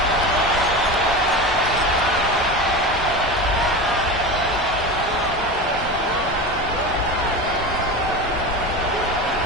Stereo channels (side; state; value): left; noise; rumble, 13 dB below the sound